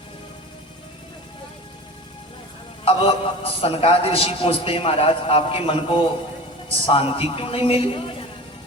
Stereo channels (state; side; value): normal; both; correlation 0.35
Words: अब सनकादि ऋषि पूछते हैं, महाराज आपके मन को शांति क्यों नहीं मिली।